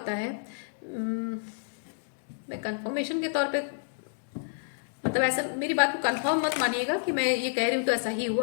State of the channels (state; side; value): silent; right; digital silence